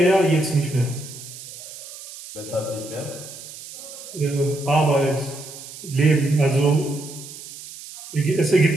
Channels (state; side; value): noise; right; hiss, 14 dB below the sound